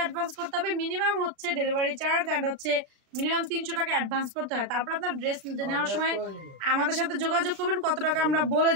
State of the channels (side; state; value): left; late; 36 ms